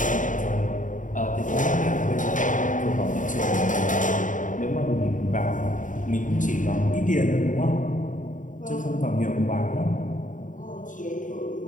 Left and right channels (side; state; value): right; late; 0.37 ms